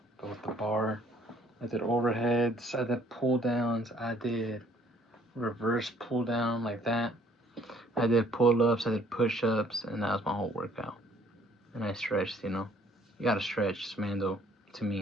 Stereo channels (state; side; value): normal; both; correlation 0.61